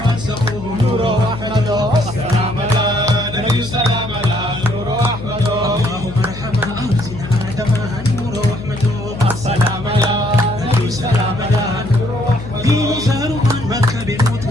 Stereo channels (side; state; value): left; noise; hum, 11 dB below the sound